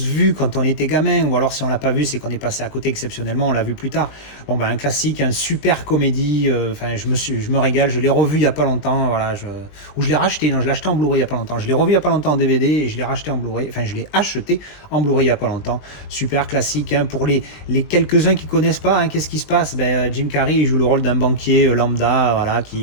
vu quand on était gamin, ou alors si on l'a pas vu, c'est qu'on est passé à côté exceptionnellement, on l'a vu plus tard. Un classique, un super comédie. Je me régale. Je l'ai revu il y a pas longtemps, voilà. Ou je l'ai racheté. Non, je l'ai acheté en Blu-ray il y a pas longtemps. Je l'ai revu il y a pas longtemps en DVD et je l'ai racheté en Blu-ray. Enfin, je l'ai acheté en Blu-ray il y a pas longtemps. Super classique, hein, pour les quelques-uns qui connaissent pas. Hein, qu'est-ce qui se passe ? Jim Carrey il joue le rôle d'un banquier lambda, voilà,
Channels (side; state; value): right; late; 20 ms